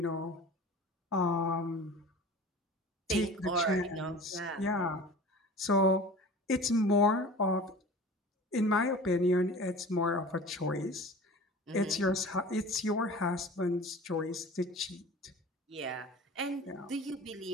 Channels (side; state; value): both; normal; correlation 0.40